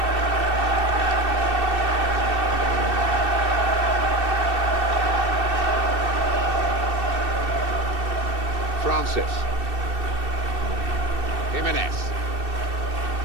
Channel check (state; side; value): late; left; 2.7 ms